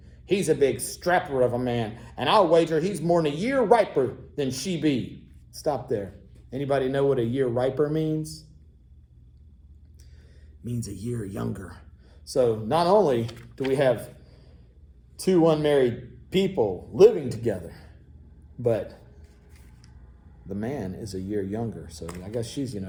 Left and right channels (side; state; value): both; identical; correlation 1.00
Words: He's a big strapper of a man, and I'll wager he's more than a year riper than she be." Stop there. Anybody know what a year riper means? It means a year younger. So not only do we have two unmarried people living together, but the man is a year younger. So I guess she's,